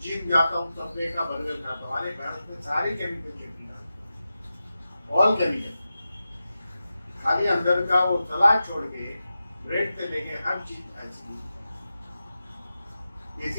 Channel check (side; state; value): both; inverted; correlation -0.92